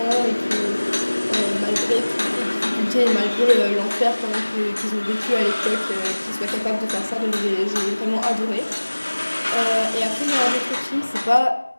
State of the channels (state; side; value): inverted; both; correlation -1.00